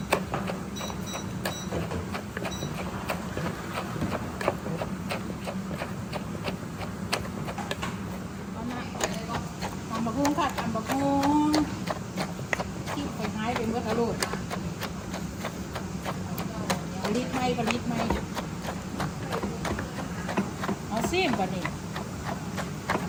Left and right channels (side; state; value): both; identical; correlation 1.00